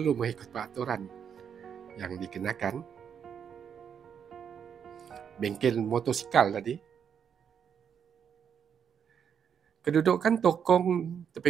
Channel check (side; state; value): left; quieter; 7.8 dB